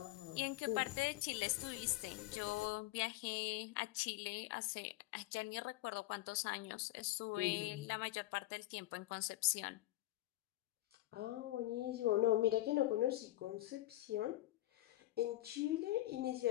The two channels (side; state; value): right; quieter; 16.3 dB